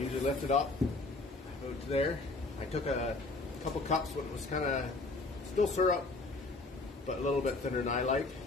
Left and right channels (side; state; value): right; quieter; 3.3 dB